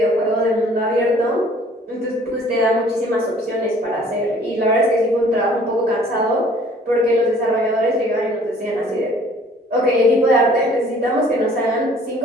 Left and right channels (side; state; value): both; normal; correlation 0.54